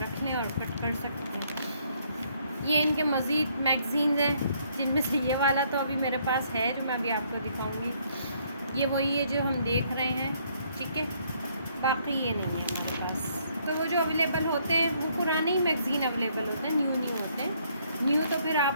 रख लें और कट कर सकते हैं। ये इनके मज़ीद मैगज़ीन्स हैं, जिनमें से ये वाला तो अभी मेरे पास है जो मैं अभी आपको दिखाऊंगी। ये वही है जो हम देख रहे हैं, ठीक है। बाकी ये नहीं है मेरे पास। तो वो जो अवेलेबल होते हैं वो पुराने ही मैगज़ीन अवेलेबल होते हैं, न्यू नहीं होते हैं। न्यू तो फिर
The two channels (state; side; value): inverted; both; correlation -0.68